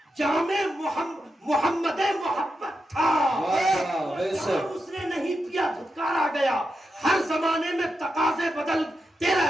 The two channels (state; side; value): normal; both; correlation 0.87